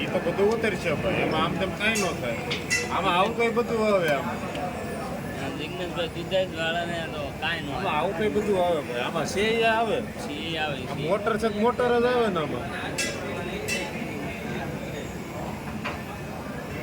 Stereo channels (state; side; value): identical; both; correlation 1.00